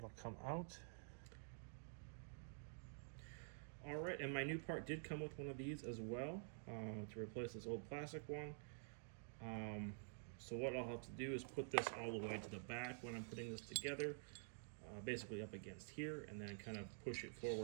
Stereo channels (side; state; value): left; silent; digital silence